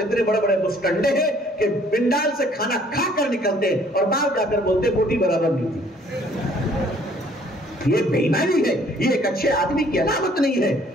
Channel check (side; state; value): both; normal; correlation 0.59